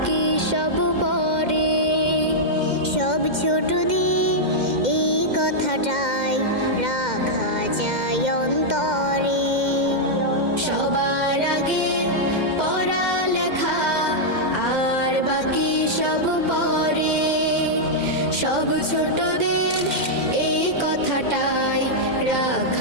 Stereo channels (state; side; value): late; left; 2.1 ms